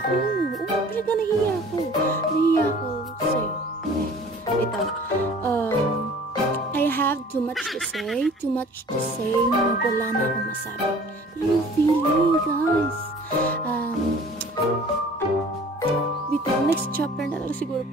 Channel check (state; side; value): normal; both; correlation 0.48